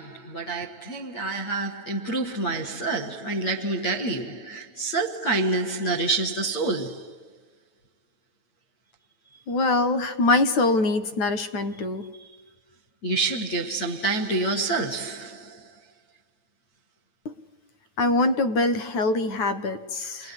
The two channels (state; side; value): late; right; 9.1 ms